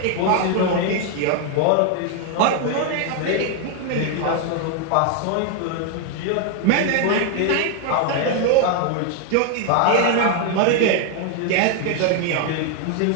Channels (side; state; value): both; different; correlation 0.00